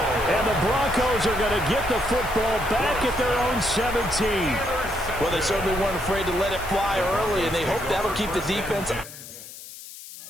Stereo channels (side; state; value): left; noise; hiss, 15 dB below the sound